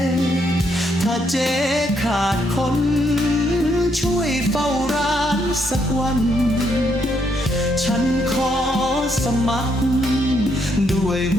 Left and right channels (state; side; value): normal; both; correlation 0.75